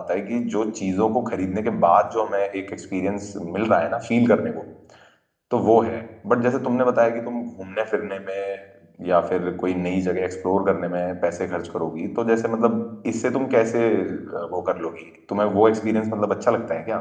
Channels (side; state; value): both; identical; correlation 1.00